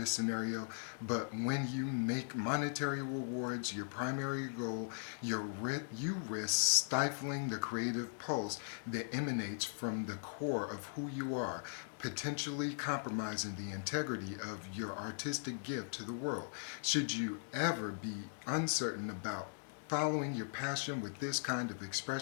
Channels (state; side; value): silent; right; digital silence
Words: scenario, but when you make monetary rewards your primary goal, you risk stifling the creative pulse that emanates from the core of who you are, potentially compromising the integrity of your artistic gift to the world. Should you ever be uncertain about following your passion with this kind of